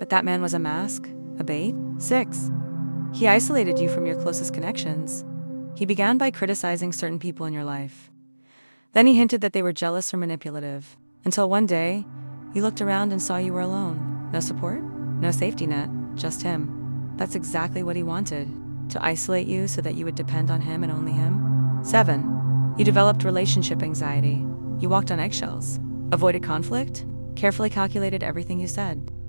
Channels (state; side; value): inverted; both; correlation -1.00